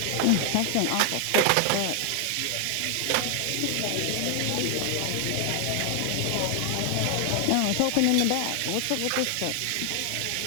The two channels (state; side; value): different; both; correlation 0.00